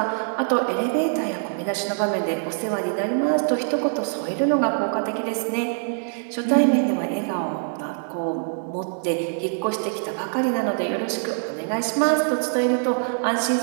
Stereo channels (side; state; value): left; silent; 63 dB below the other